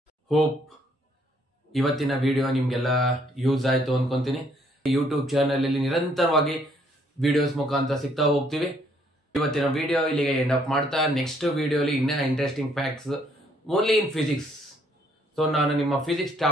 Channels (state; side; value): normal; both; correlation 0.67